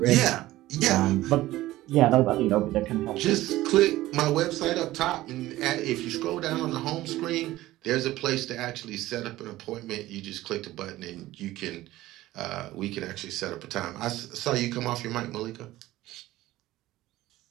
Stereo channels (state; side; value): quieter; left; 16.4 dB